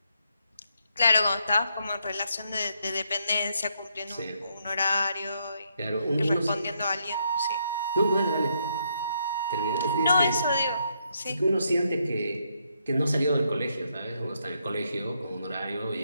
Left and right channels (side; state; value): both; inverted; correlation -0.76